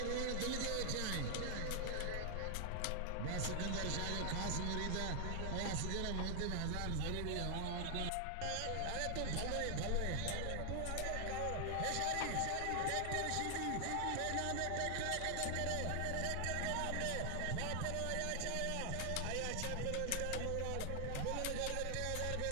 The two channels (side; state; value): both; different; correlation 0.00